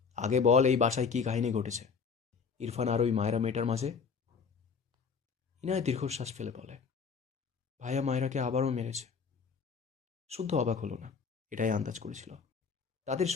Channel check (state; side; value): quieter; right; 5.7 dB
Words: আগে বল, এই বাসায় কি কাহিনী ঘটেছে ইরফান আর ওই মায়েরা মেয়েটার মাঝে? ইনায়া দীর্ঘশ্বাস ফেলে বলে, ভাইয়া মায়েরাকে আবারও মেরেছে। শুদ্ধ অবাক হলো না, এটাই আন্দাজ করেছিল। তাদের